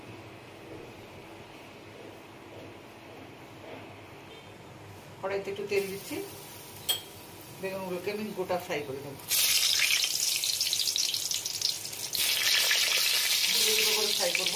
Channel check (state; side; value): identical; both; correlation 1.00